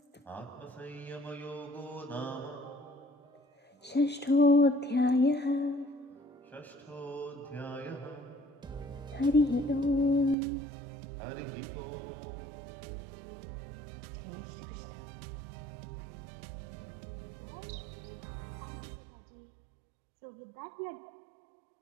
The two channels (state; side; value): drops out; left; at 10.4 s